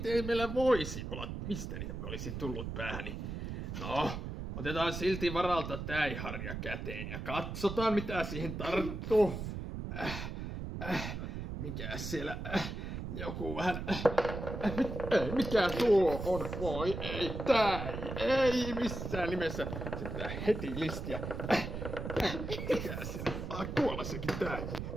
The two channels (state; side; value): noise; right; rumble, 6 dB below the sound